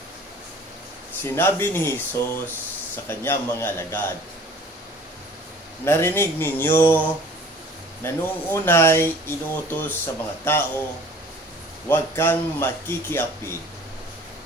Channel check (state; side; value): normal; both; correlation 0.48